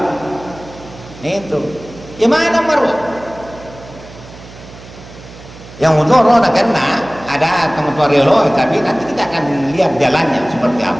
Itu. Gimana marwah? Yang utara nak kena ada teman-teman relo, tapi nanti kita akan lihat jalannya seperti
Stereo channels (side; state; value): right; noise; hum, 18 dB below the sound